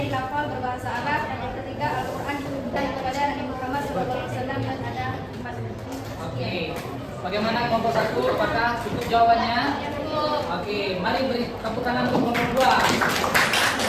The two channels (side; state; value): both; identical; correlation 1.00